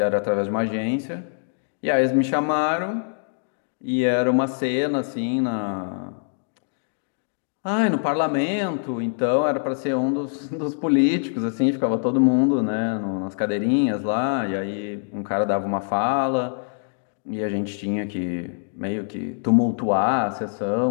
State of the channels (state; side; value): silent; right; digital silence